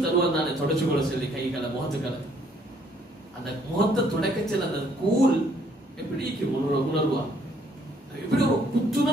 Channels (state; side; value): normal; both; correlation 0.65